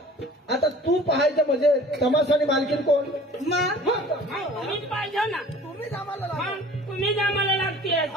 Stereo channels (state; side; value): normal; both; correlation 0.47